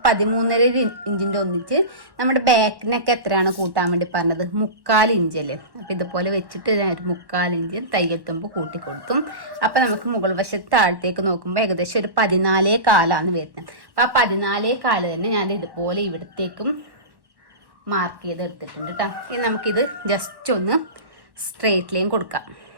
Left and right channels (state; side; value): late; left; 1.1 ms